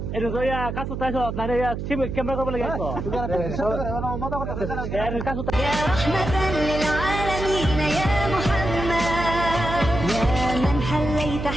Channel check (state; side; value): noise; right; hum, 5 dB below the sound